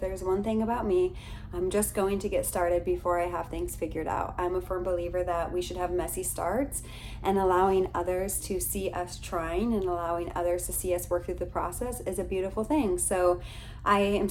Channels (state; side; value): identical; both; correlation 1.00